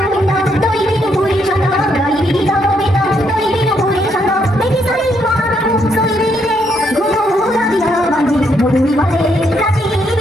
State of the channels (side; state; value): both; normal; correlation 0.74